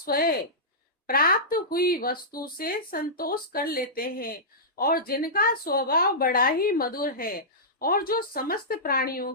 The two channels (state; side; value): normal; both; correlation -0.16